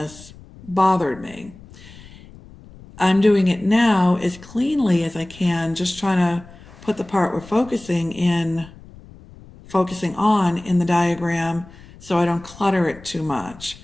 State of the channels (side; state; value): left; noise; rumble, 20 dB below the sound